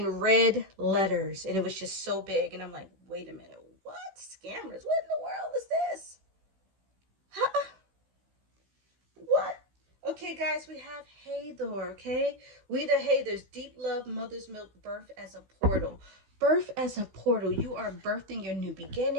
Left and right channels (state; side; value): late; left; 16 ms